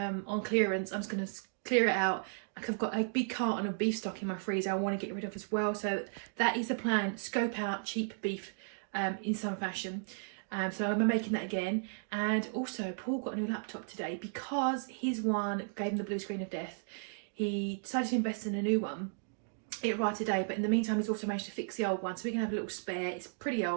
clearance, I'm just going to clear it out. Like, I've got a big carton of beef stock in my freezer I want to get rid of as well. So that is the plan. Scope out cheap beef in some fashion. So I'm making that again. And also Paul got a new laptop today because his one gave him the blue screen of death. He decided to invest in a new one. It arrived today, but in the meantime he's also managed to fix the old one. So we're going to have a little spare. It's pretty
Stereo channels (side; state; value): left; silent; digital silence